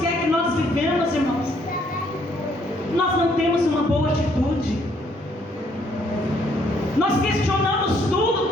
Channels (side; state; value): both; normal; correlation 0.67